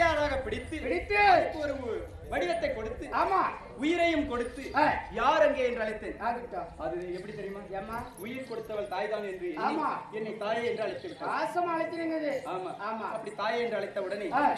பிடித்து ஒரு வடிவத்தை கொடுத்து உயிரையும் கொடுத்து யார் அங்கே என்று அழைத்தேன். அது எப்படி தெரியுமா? உயிர் கொடுத்தவள் தாய் தான் என்று என்னை தாயை என்று அழைத்து. ஆமா. அப்படி தாயை என்று அழைத்த உடனே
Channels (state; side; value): identical; both; correlation 1.00